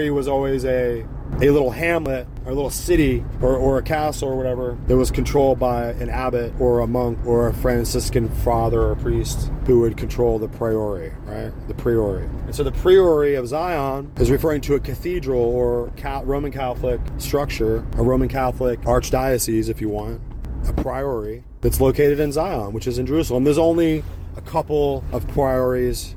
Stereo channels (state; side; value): identical; both; correlation 1.00